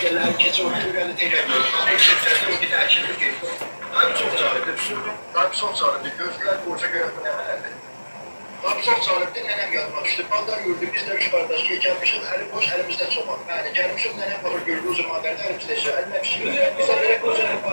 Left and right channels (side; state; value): both; inverted; correlation -1.00